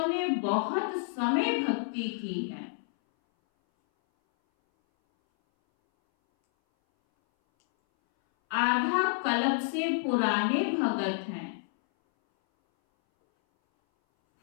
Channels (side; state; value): right; silent; 59 dB below the other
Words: ने बहुत समय भक्ति की है, आधा कल्प से पुराने भगत हैं,